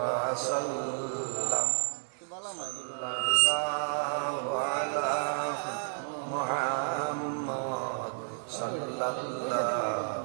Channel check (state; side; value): silent; left; digital silence